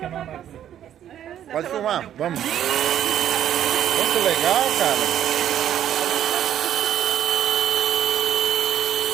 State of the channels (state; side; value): quieter; left; 10.6 dB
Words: Pode filmar, vamos. Muito legal, cara.